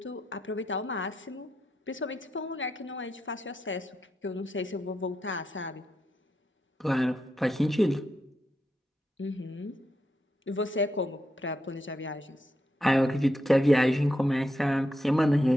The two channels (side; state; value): both; normal; correlation 0.84